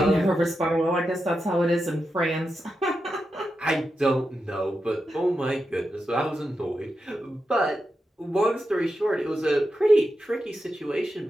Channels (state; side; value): normal; both; correlation 0.88